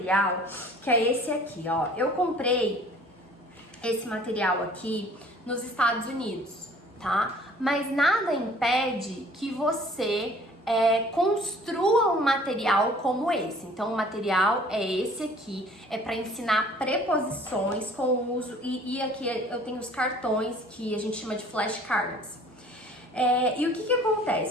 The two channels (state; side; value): normal; both; correlation 0.52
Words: que é esse aqui, ó. Eu comprei esse material aqui nos Estados Unidos, tá? Mas nada impede que você construa um material como esse. Então, o material é esse aqui, é para ensinar preposições com o uso, e aqui eu tenho os cartões que a gente chama de flashcards. E o que